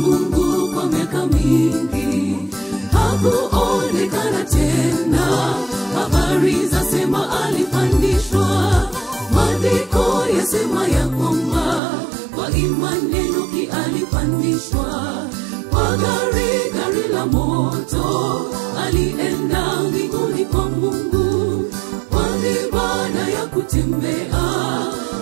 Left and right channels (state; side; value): drops out; left; at 11.8 s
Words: kwa miaka mingi. Hakuonekana tena, habari zasema alipandishwa. Maandiko yasema ya kwamba kwa imani Enoki alipandishwa kwa gari la moto, alienda mbinguni kwa Mungu kwa ibada ya kutembea